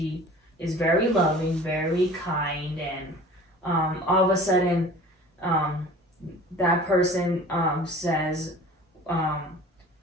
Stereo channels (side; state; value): both; normal; correlation 0.44